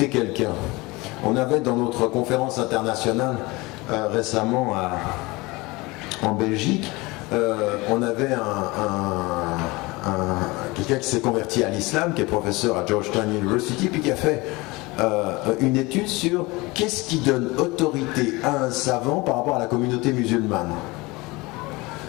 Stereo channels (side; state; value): right; quieter; 23.1 dB